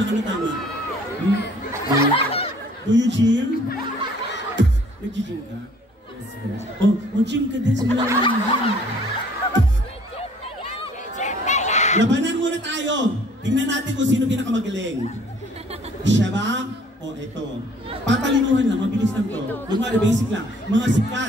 ano tama? Do you gym? Nag-gym ka? Yes, yes. Oh, mag-gym ka din sa mga labanan muna tayo. Tingnan natin kung sino pinakamagaling. Siya ba? O ito. Patalinuhan lang, mabilis lang to. Lumari, basic lang. Mga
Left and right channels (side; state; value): both; normal; correlation 0.57